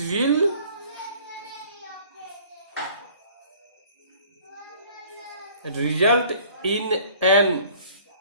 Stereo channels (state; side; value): inverted; both; correlation -0.52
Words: will result in an